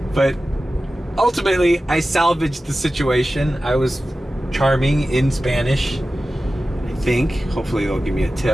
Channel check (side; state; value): both; normal; correlation 0.95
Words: But ultimately, I salvaged the situation. I was charming in Spanish, I think. Hopefully they'll give me a